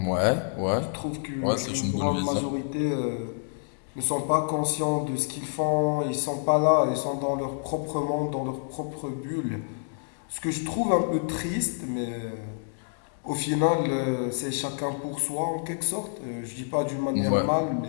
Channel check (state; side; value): silent; right; digital silence